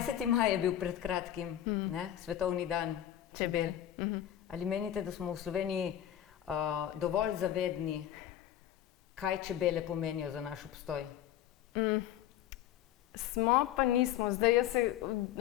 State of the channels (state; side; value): quieter; right; 11.5 dB